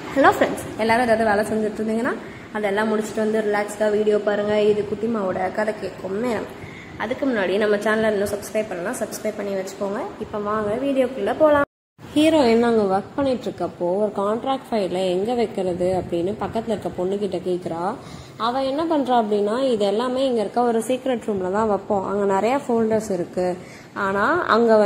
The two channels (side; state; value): both; identical; correlation 1.00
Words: Hello friends, எல்லாரும் ஏதாவது வேலை செஞ்சுட்டு இருந்தீங்கன்னா அதெல்லாம் முடிச்சுட்டு வந்து ரிலாக்ஸ்டாக வீடியோ பாருங்கள். இது குட்டிமாவோட கதை கேட்கும் நேரம். அதுக்கு முன்னாடி நம்ம சேனலை இன்னும் சப்ஸ்கிரைப் பண்ணலாம், சப்ஸ்கிரைப் பண்ணி வச்சுக்கோங்க. இப்போ வாங்க வீடியோக்குள்ளே போகலாம். ஹீரோயின் அங்கே ஒர்க் பண்ணிட்டு இருக்கப்போ ஒரு கான்ட்ராக்ட் ஃபைலை எங்கே வைக்கிறது அப்படின்னு பக்கத்தில் இருக்க பொண்ணுக்கிட்ட கேட்குறா. அவள் என்ன பண்ணுறா அப்படின்னா, இது எல்லாமே இங்கே இருக்க ஒரு சீக்ரெட் ரூமில் தான் வைப்போம், அங்கே நிறையா ஃபோல்டர்ஸ் இருக்குது. ஆனால் அங்கே